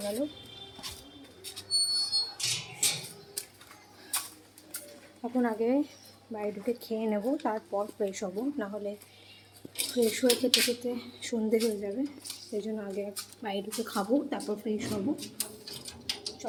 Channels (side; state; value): both; identical; correlation 1.00